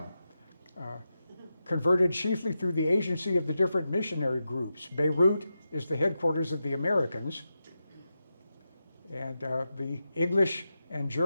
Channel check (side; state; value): both; inverted; correlation -0.89